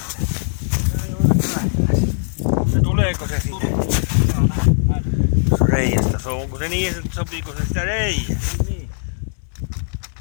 Tuleeko se sinne? Joo, näin. Reiästä. Onko se niin, että sopiiko se sitä reijää? Niin. Niin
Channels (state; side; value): silent; right; digital silence